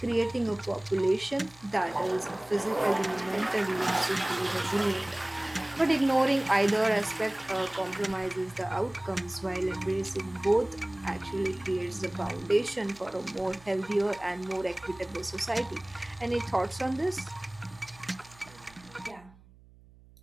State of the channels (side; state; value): right; noise; hum, 25 dB below the sound